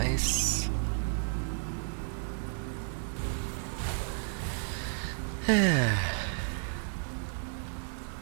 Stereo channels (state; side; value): silent; left; 56 dB below the other